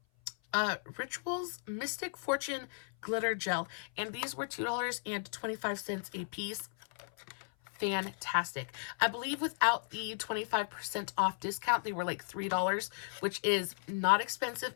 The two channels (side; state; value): right; silent; 54 dB below the other